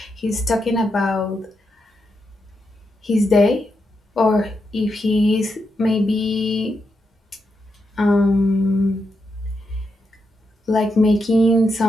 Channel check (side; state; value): both; normal; correlation 0.84